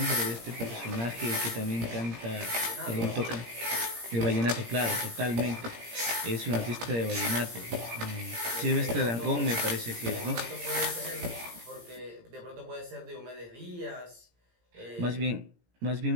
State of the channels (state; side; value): late; left; 17 ms